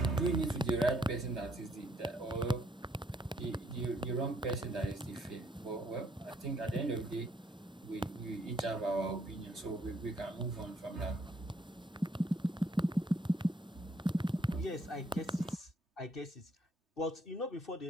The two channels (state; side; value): normal; both; correlation 0.69